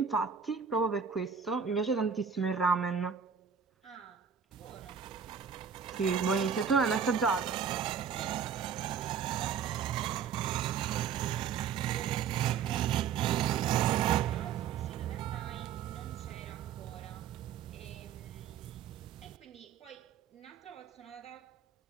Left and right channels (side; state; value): left; quieter; 7.0 dB